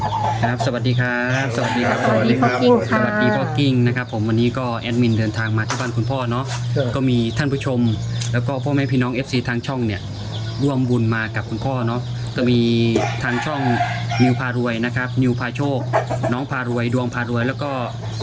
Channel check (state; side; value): identical; both; correlation 1.00